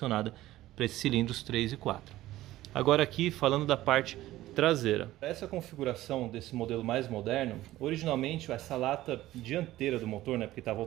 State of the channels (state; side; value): quieter; left; 15.6 dB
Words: para esses cilindros 3 e 4. Agora aqui, falando da parte traseira. Essa configuração desse modelo mais moderno, originalmente essa lata dianteira do motor, né, porque está